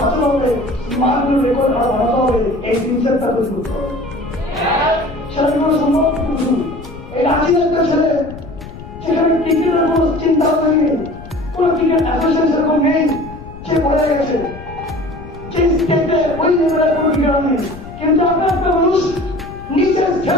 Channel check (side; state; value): left; noise; rumble, 15 dB below the sound